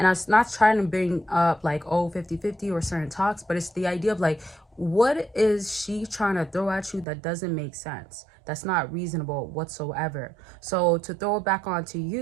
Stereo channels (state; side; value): drops out; left; at 7.1 s